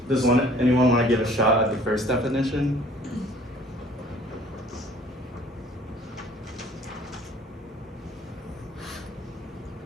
Does anyone want to give a shot at the first definition?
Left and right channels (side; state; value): both; normal; correlation 0.53